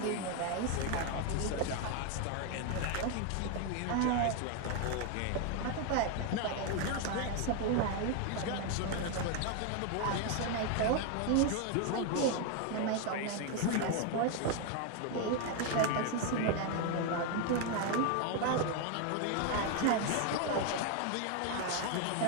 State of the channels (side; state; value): both; different; correlation 0.01